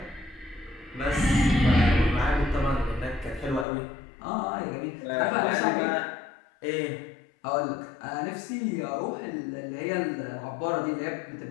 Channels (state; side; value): drops out; right; at 3.7 s